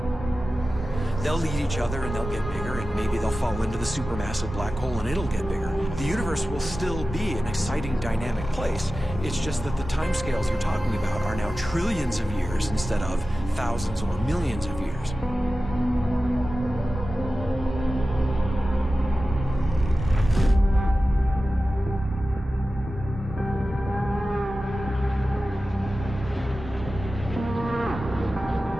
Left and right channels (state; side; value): normal; both; correlation 0.94